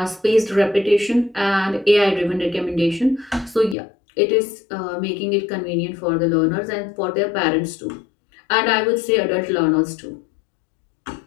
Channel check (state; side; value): drops out; right; at 3.8 s